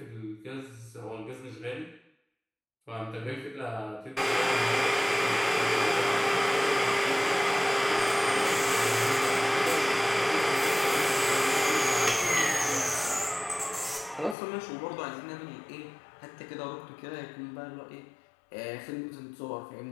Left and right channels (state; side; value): drops out; right; at 14.4 s